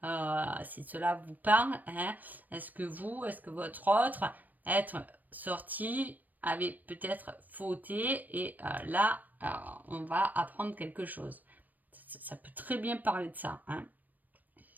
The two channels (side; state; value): left; late; 0.084 ms